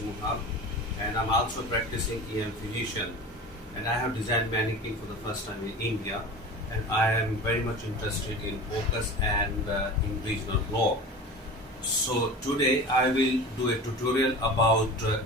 and I'm also practicing EM physician. And I have designed mannequin for the first time in India, and I am very much interested in focus and in regional block. So today I will do a tutorial about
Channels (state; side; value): normal; both; correlation 0.34